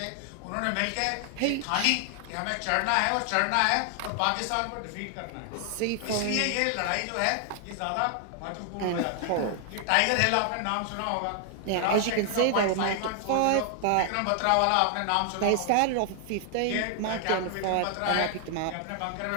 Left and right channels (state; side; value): different; both; correlation 0.00